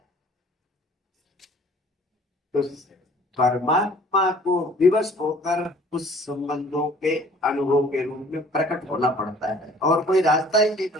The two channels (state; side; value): normal; both; correlation 0.53